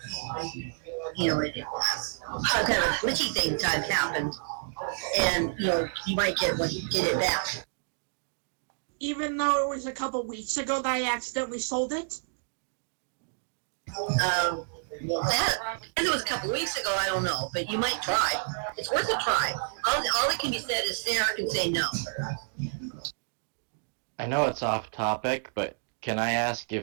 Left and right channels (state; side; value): silent; left; digital silence